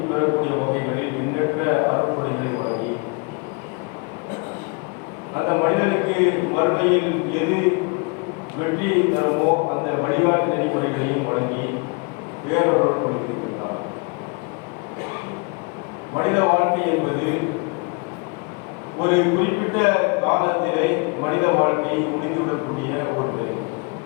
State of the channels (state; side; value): quieter; right; 32.6 dB